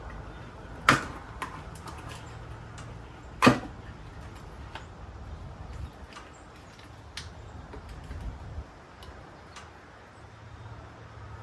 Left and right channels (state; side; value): identical; both; correlation 1.00